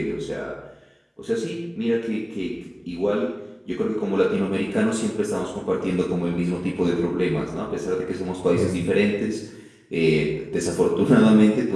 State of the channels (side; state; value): both; identical; correlation 1.00